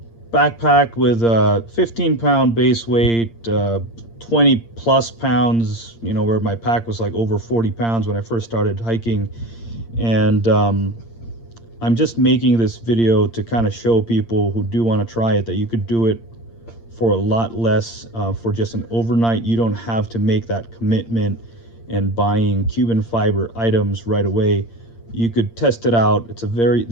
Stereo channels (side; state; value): right; late; 8.7 ms